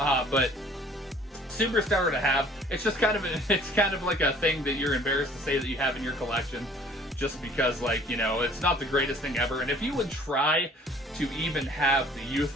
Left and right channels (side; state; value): both; normal; correlation 0.53